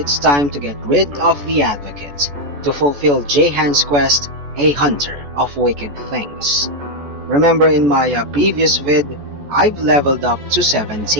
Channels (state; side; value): late; left; 14 ms